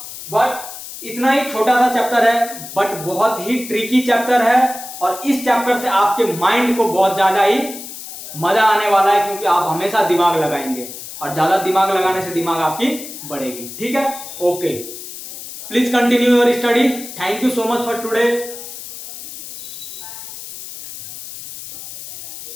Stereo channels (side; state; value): left; noise; hiss, 12 dB below the sound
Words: बट इतना ही छोटा सा चैप्टर है, बट बहुत ही ट्रिकी चैप्टर है, और इस चैप्टर से आपके माइंड को बहुत ज्यादा ही मजा आने वाला है, क्योंकि आप हमेशा दिमाग लगाएंगे, और ज्यादा दिमाग लगाने से दिमाग आपकी बढ़ेगी। ठीक है, okay, please continue your study. Thank you so much for today.